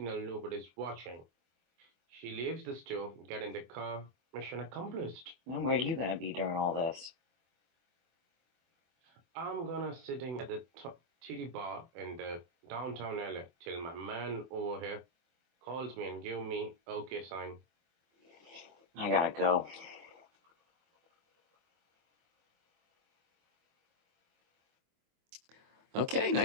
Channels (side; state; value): left; late; 24 ms